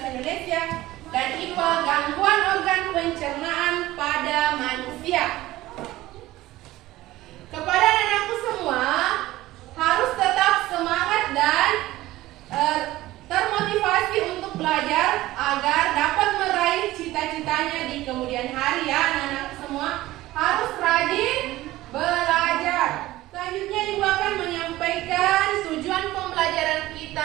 Indonesia, dan IPA gangguan organ pencernaan pada manusia. Kepada anak-anakku semua, harus tetap semangat dan termotivasi untuk belajar agar dapat meraih cita-citanya di kemudian hari ya anak-anak semua. Harus rajin belajar. Selanjutnya Ibu akan menyampaikan tujuan pembelajaran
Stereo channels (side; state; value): left; quieter; 16.8 dB